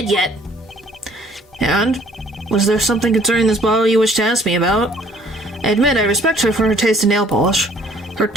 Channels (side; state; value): both; normal; correlation 0.59